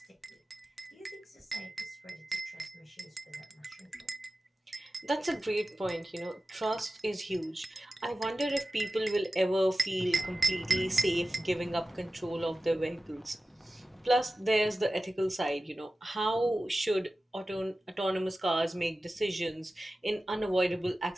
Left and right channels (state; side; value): normal; both; correlation 0.95